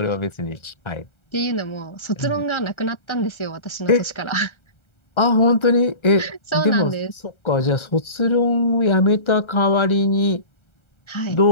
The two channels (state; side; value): late; right; 1.3 ms